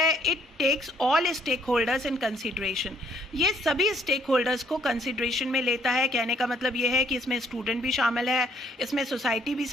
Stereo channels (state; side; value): normal; both; correlation 0.66